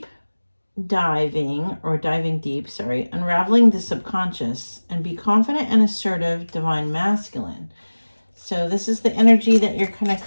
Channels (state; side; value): inverted; both; correlation -1.00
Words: diving, or diving deep, sorry, unraveling the subconscious and be confident and assertive, divine masculine. So this is the energy that you're kind of